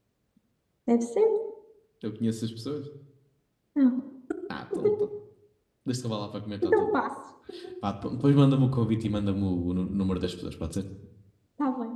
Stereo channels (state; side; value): identical; both; correlation 1.00